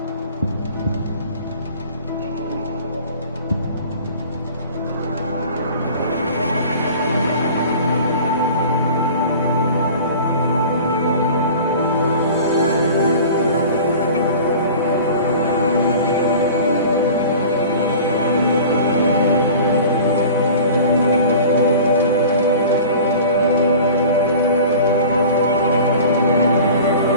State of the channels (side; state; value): both; inverted; correlation -0.41